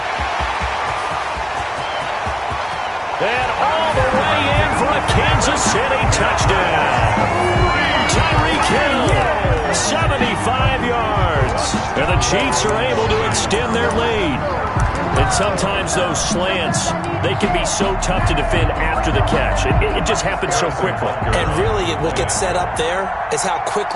And all the way in for a Kansas City touchdown. Tyreek Hill, 75 yards. And the Chiefs are able to extend their lead. And sometimes those slants, they can be so tough to defend after the catch. It just happens so quickly. And really, what gets set up there is how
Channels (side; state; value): both; identical; correlation 1.00